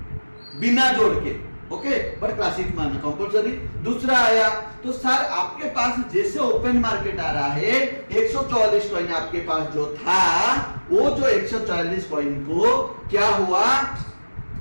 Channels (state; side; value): inverted; both; correlation -1.00